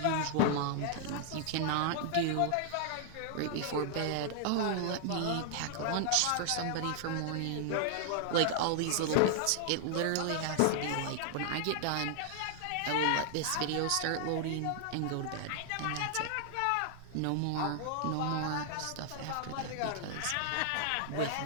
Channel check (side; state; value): both; different; correlation -0.01